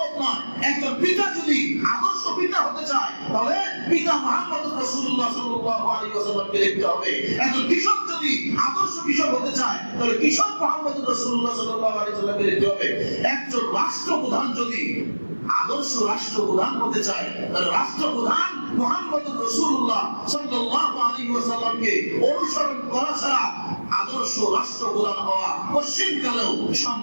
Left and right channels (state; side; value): inverted; both; correlation -1.00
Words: নয়। একজন পিতা যদি আদর্শ পিতা হতে চায়, তাহলে পিতা মুহাম্মদুর রাসূলুল্লাহ সাল্লাল্লাহু আলাইহি ওয়াসাল্লামকে দেখতে হবে। একজন কৃষক যদি আদর্শ কৃষক হতে চায়, তাহলে কৃষক মুহাম্মদুর রাসূলুল্লাহ সাল্লাল্লাহু আলাইহি ওয়াসাল্লামকে দেখতে হবে। একজন রাষ্ট্রপ্রধান যদি আদর্শ রাষ্ট্রপ্রধান হতে চায়, তাহলে রাষ্ট্রপ্রধান মুহাম্মদুর রাসূলুল্লাহ সাল্লাল্লাহু আলাইহি ওয়াসাল্লামকে অনুসরণ করা ছাড়া আদর্শ রাষ্ট্রপ্রধান হওয়া পশ্চিমকালেও